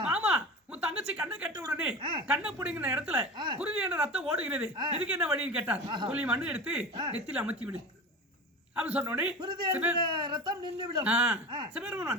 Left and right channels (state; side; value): normal; both; correlation 0.30